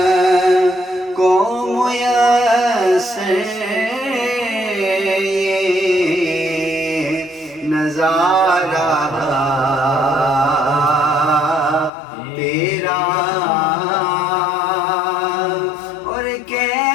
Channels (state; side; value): drops out; right; at 11.9 s